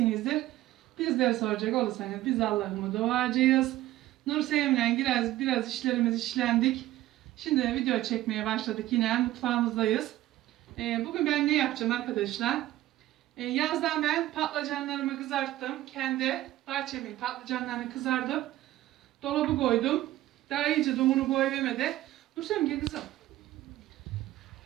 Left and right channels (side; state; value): left; quieter; 15.3 dB